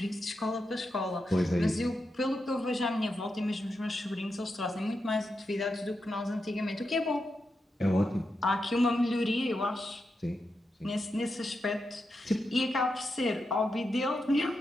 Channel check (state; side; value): normal; both; correlation 0.87